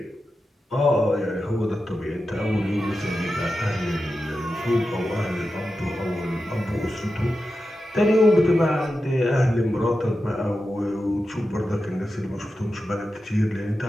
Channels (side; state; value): both; normal; correlation 0.91